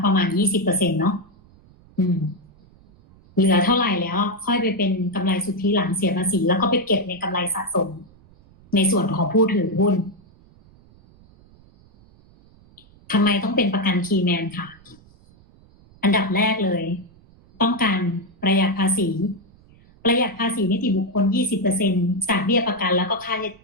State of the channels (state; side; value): noise; right; rumble, 27 dB below the sound